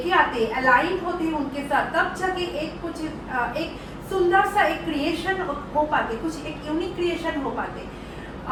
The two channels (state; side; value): identical; both; correlation 1.00